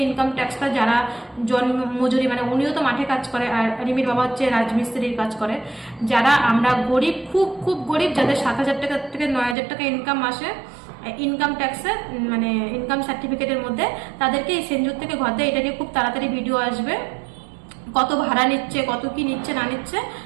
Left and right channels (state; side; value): drops out; left; at 9.6 s